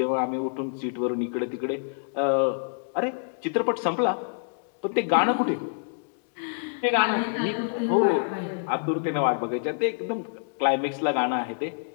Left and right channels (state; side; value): silent; right; digital silence